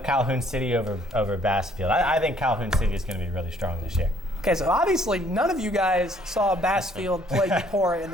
Calhoun City over Bassfield. I think Calhoun City is going to be really strong this year. Okay, so obviously none of you guys saw Bassfield play Eupora in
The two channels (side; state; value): both; normal; correlation 0.62